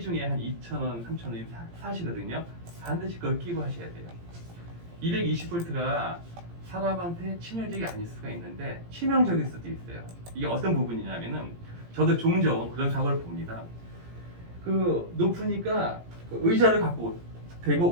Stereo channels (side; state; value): left; late; 17 ms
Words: 한 2,000원, 3,000원 사시거든요. 반드시 그걸 끼고 하셔야 돼요. 220V가 사람한테 치명적이 아닐 수가 있는데 치명적일 수도 있어요. 이게 어떤 부분이냐면은 저도 종종 그런 사고를 봅니다. 높으니까 의자를 갖고 대고